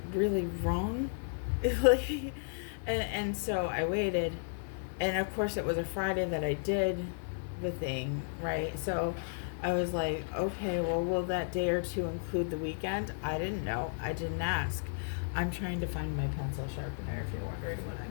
really wrong? and so I waited, and of course it was a Friday that I did the thing, right? So I was like, okay, well, will that day or two include the weekend? I didn't know. I didn't ask. I'm trying to find my pencil sharpener, if you're wondering what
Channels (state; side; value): silent; right; digital silence